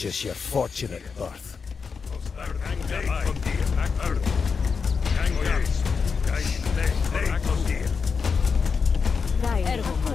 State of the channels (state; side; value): quieter; right; 5.5 dB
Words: your fortunate birth.